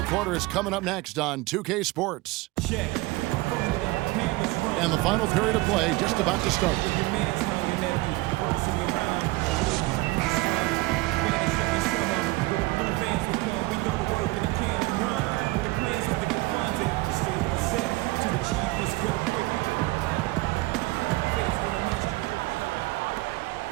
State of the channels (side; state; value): left; quieter; 21.4 dB